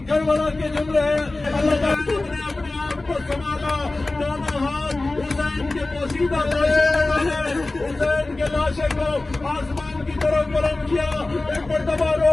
کربلا کے جملے ہیں. اللہ تعالیٰ نے اپنے آپ کو سنبھالا، دونوں ہاتھ حسین کے پوشیدہ حسین کے لاشے کو آسمان کی طرف بلند کیا، ایک مرتبہ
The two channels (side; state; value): right; quieter; 3.0 dB